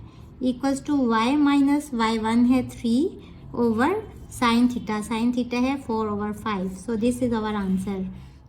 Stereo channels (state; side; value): identical; both; correlation 1.00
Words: equals to y minus y1 है 3 over sine theta. Sine theta है 4/5। So this is our answer.